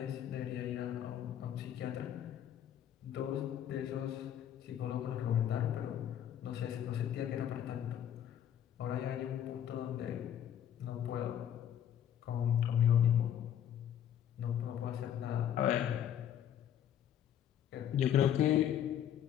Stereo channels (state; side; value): quieter; right; 10.1 dB